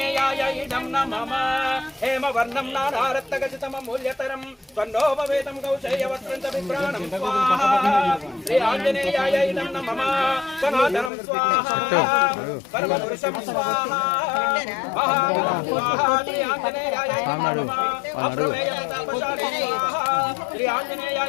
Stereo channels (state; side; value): drops out; right; at 11.1 s